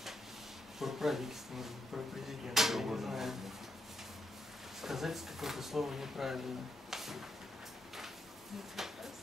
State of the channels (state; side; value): normal; both; correlation 0.80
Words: Про правительство, может быть, про президента, я не знаю. Сказать какое-то слово неправильно.